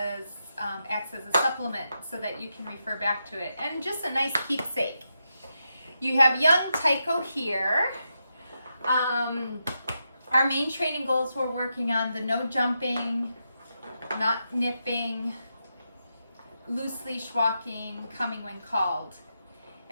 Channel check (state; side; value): inverted; both; correlation -0.85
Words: acts as a supplement so that you can refer back to it. And just a nice keepsake. You have young Tycho here. Our main training goals we're working on the no jumping, not nipping, loose leash walking, coming when called.